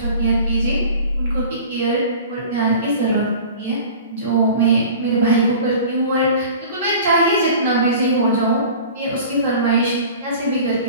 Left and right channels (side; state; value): both; inverted; correlation -0.41